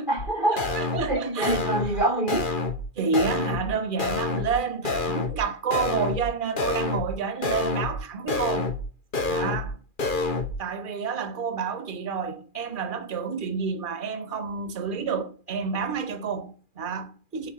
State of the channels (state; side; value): late; right; 2.4 ms